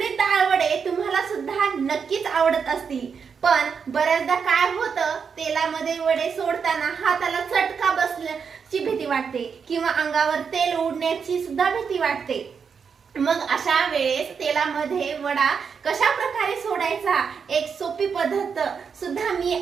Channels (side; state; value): left; quieter; 6.2 dB